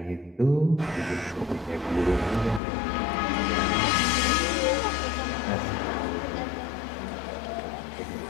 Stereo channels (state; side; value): drops out; right; at 2.6 s